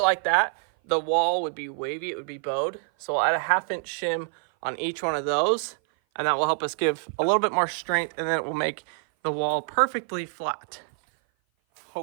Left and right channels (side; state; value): left; silent; 57 dB below the other